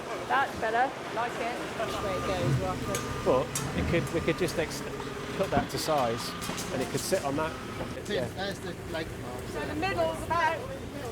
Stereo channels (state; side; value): identical; both; correlation 1.00